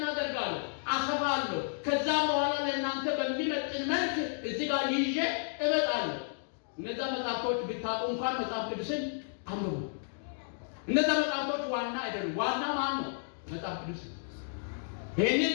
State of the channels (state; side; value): silent; right; digital silence